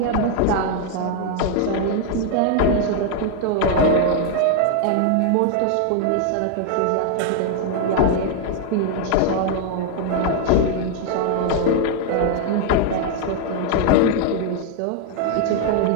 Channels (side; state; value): both; different; correlation 0.00